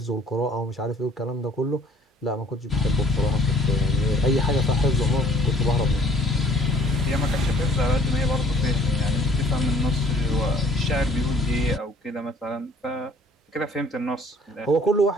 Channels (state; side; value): normal; both; correlation 0.56